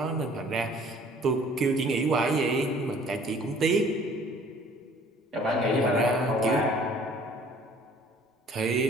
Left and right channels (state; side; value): normal; both; correlation 0.54